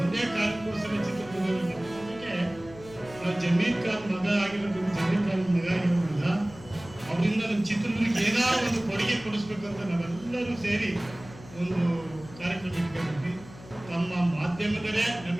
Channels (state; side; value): noise; left; hum, 18 dB below the sound